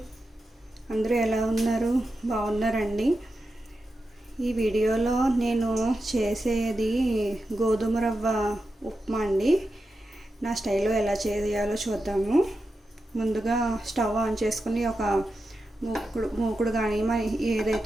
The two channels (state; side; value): normal; both; correlation 0.90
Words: అందరూ ఎలా ఉన్నారు? బాగున్నారండి. ఈ వీడియోలో నేను చేసేది గోధుమ రవ్వ ఉప్మా అండి. నా స్టైల్లో ఎలా చేయాలో చూద్దాము. ముందుగా స్టవ్ ఆన్ చేసుకుని ఒక మూకుడు కానీ